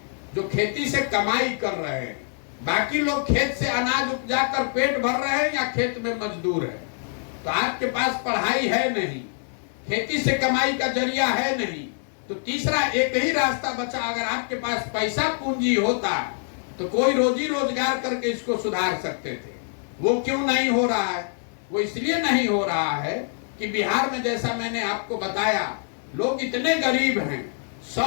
जो खेती से कमाई कर रहे हैं। बाकी लोग खेत से अनाज उपजा कर पेट भर रहे हैं या खेत में मजदूर है। तो आपके पास पढ़ाई है नहीं, खेती से कमाई का जरिया है नहीं, तो तीसरा एक ही रास्ता बचा। अगर आपके पास पैसा पूंजी होता तो कोई रोजी रोजगार करके इसको सुधार सकते थे। वो क्यों नहीं हो रहा है? वो इसलिए नहीं हो रहा है कि बिहार में, जैसा मैंने आपको बताया, लोग इतने गरीब हैं,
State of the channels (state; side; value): silent; right; 62 dB below the other